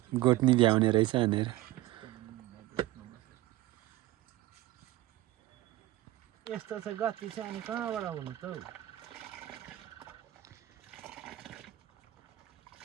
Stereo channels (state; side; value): quieter; left; 16.4 dB